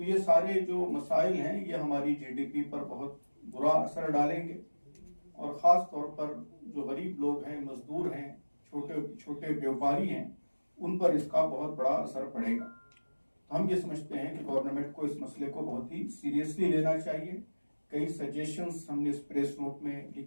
ये सारे जो मसाइल हैं ये हमारी जीडीपी पर बहुत बुरा असर डालेंगे और ख़ास तौर पर जो गरीब लोग हैं, मजदूर हैं, छोटे छोटे व्यापारी हैं, उन पर इसका बहुत बड़ा असर पड़ेगा। तो हम ये समझते हैं कि गवर्नमेंट को इस मसले को बहुत ही सीरियसली लेना चाहिए। कई सजेशंस हमने इस प्रेस नोट में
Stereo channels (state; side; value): inverted; both; correlation -1.00